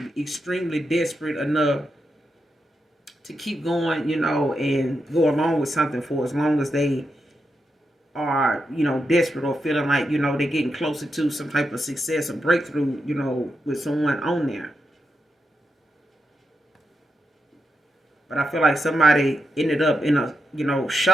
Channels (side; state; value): both; normal; correlation 0.86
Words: extremely desperate enough to keep going, and go along with something for as long as they are, desperate or feeling like, they're getting closer to some type of success or breakthrough, with someone on there. But I feel like somebody ended up in a,